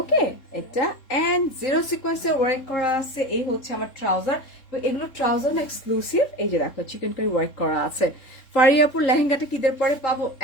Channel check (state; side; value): late; right; 3.6 ms